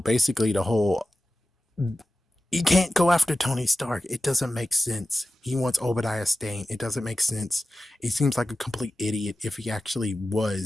the whole, you can't go after Tony Stark. It doesn't make sense. He wants Obadiah Stane. It doesn't make sense. He seems like a complete idiot if he actually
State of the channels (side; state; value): both; normal; correlation 0.94